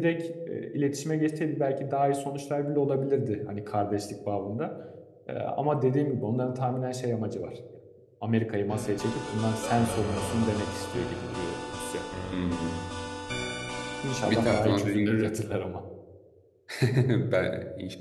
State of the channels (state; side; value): identical; both; correlation 1.00